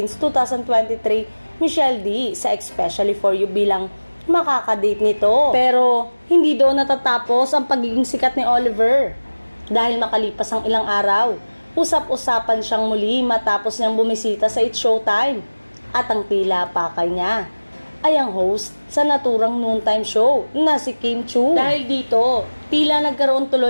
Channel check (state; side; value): inverted; both; correlation -1.00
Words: 2023 Michelle D sa Especially for You bilang makakadate nito. Pero hindi doon natatapos ang pagiging sikat ni Oliver. Dahil makalipas ang ilang araw, usap-usapan siyang muli matapos niyang bumisita sa It's Showtime. At ang tila pakay niya ay ang host sa naturang noontime show na si Kim Chiu. Dahil dito, tila nagkaroon